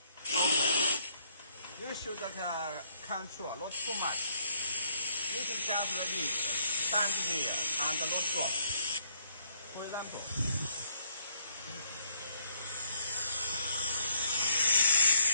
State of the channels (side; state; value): both; inverted; correlation -0.69